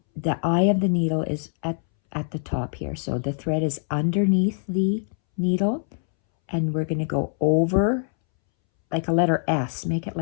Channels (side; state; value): right; silent; 63 dB below the other